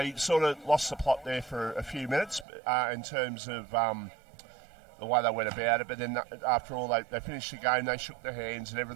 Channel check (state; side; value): drops out; left; at 2.5 s